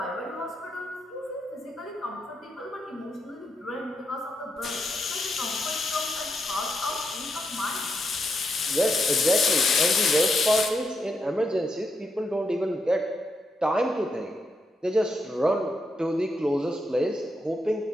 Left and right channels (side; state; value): both; normal; correlation 0.81